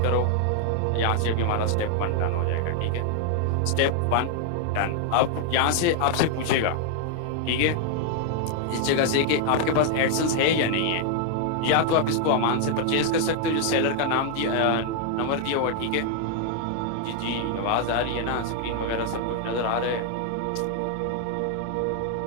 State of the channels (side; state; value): both; different; correlation 0.00